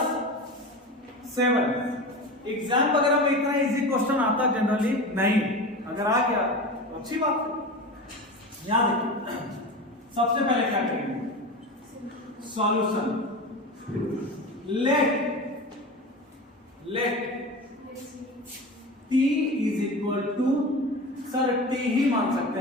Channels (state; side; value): normal; both; correlation 0.29